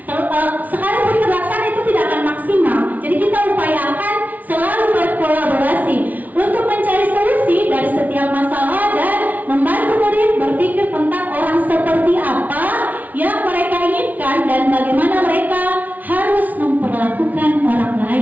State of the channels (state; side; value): late; left; 0.076 ms